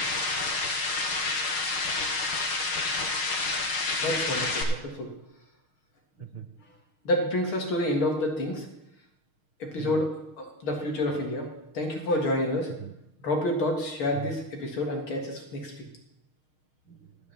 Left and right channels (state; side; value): late; right; 6.5 ms